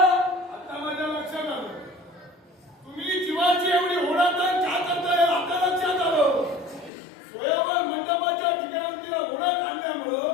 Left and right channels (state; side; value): drops out; right; at 6.9 s